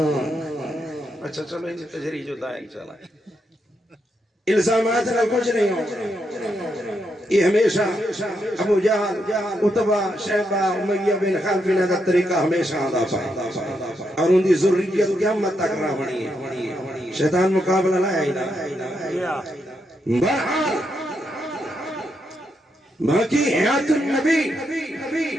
اچھا چلو ان تجری جو دائیں چلا الزامات نہ کچھ نہیں ہو یہ ہمیشہ ابو جہل عتبہ شیبہ امیہ بن خلف نے دا طریقہ ہمیشہ آدھا پائے اور ان دی ذریت قیامت تک رہا بنی ہے شیطان مقابلہ لائے ہی نہ بہرحال باقی حیات النبی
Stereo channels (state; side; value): normal; both; correlation 0.81